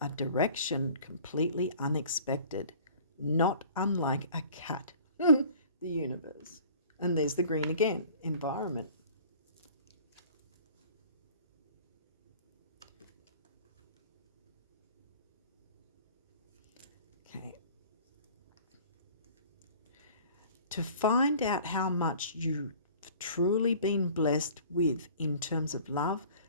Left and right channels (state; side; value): inverted; both; correlation -0.48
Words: direction completely unexpected, not unlike a cat. The universe. And there's the green again, environment. Okay. To find out how much you've truly been blessed with in terms of love,